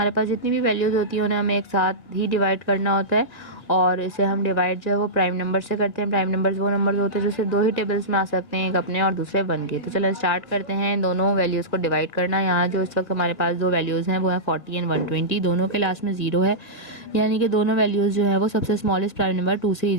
पास जितनी भी वैल्यूज़ होती हैं उन्हें हमें एक साथ ही डिवाइड करना होता है, और इसे हम डिवाइड जो है वो प्राइम नंबर से करते हैं। प्राइम नंबर्स वो नंबर्स होते हैं जो सिर्फ दो ही टेबल्स में आ सकते हैं, एक अपने और दूसरे वन के। तो चलो स्टार्ट करते हैं दोनों वैल्यूज़ को डिवाइड करना। यहाँ जो इस वक्त हमारे पास दो वैल्यूज़ हैं वो हैं 40 एंड 120। दोनों के लास्ट में 0 है, यानी कि दोनों वैल्यूज़ जो है वो सबसे स्मॉलेस्ट प्राइम नंबर 2 से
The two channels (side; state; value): right; late; 1.7 ms